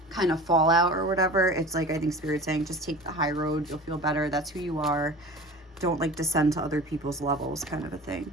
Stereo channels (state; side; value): normal; both; correlation 0.38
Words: of fallout or whatever, it's like, I think Spirit's saying just take the high road. You'll feel better. That's who you are. Don't like descend to other people's levels, kind of a thing.